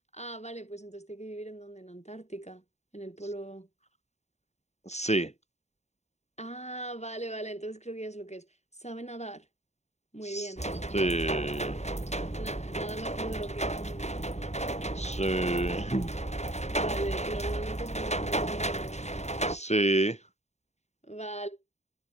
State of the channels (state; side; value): late; right; 0.32 ms